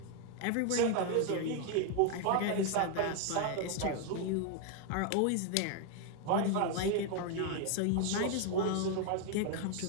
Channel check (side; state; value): both; different; correlation 0.01